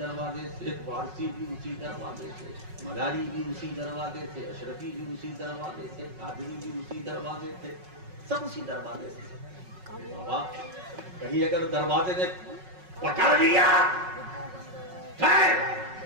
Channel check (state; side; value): late; left; 5.4 ms